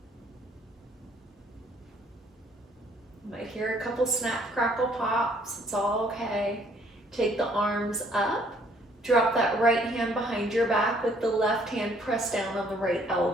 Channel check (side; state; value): both; normal; correlation 0.63